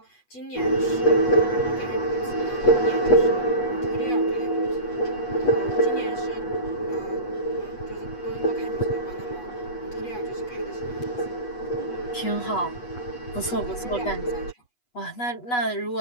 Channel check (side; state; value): right; late; 8.2 ms